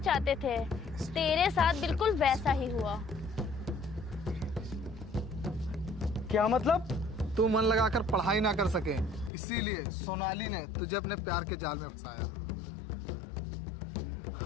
थे तेरे साथ बिल्कुल वैसा ही हुआ। क्या मतलब? तू मन लगाकर पढ़ाई ना कर सके, इसीलिए सोनाली ने तुझे अपने प्यार के जाल में फंसाया।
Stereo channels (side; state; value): right; drops out; at 9.3 s